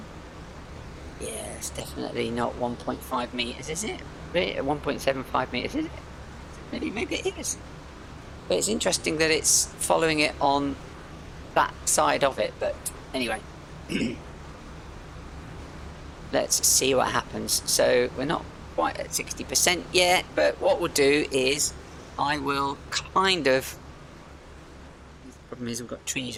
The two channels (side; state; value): both; identical; correlation 1.00